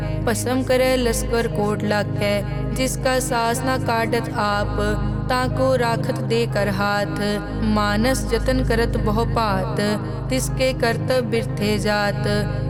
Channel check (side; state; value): both; identical; correlation 1.00